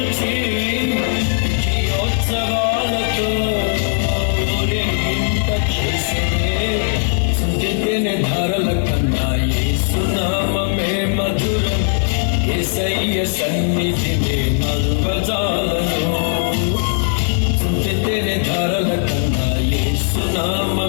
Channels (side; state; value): right; silent; digital silence